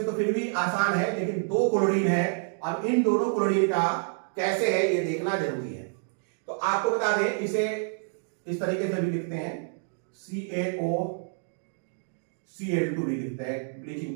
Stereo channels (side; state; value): left; silent; 59 dB below the other